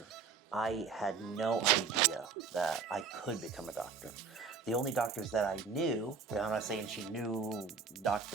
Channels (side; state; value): left; quieter; 5.2 dB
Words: I had no idea that I could become a doctor. The only doctors that I knew, and I'm not saying she knew